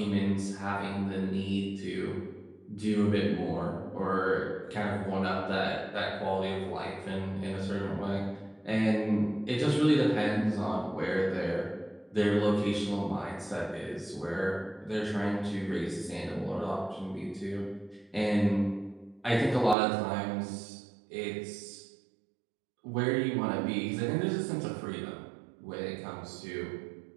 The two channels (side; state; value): left; drops out; at 19.8 s